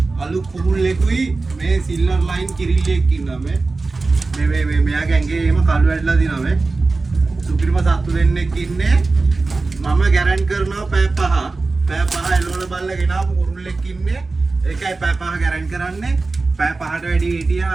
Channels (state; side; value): quieter; left; 3.7 dB